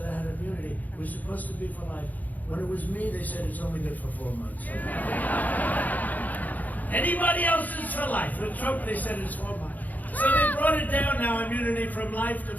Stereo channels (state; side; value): late; right; 0.080 ms